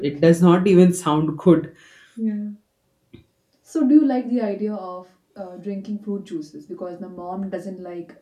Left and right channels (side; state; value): both; identical; correlation 1.00